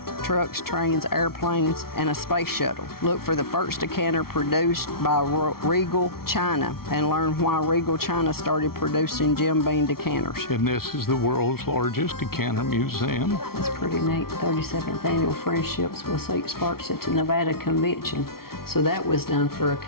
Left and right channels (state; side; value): late; right; 0.94 ms